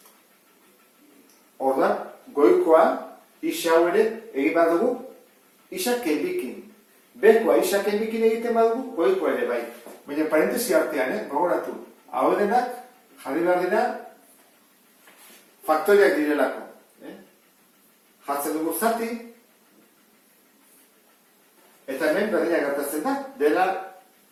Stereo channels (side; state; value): both; identical; correlation 1.00